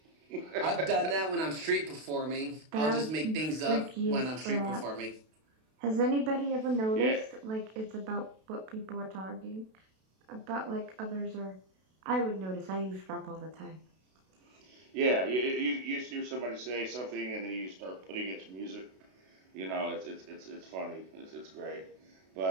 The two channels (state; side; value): late; left; 32 ms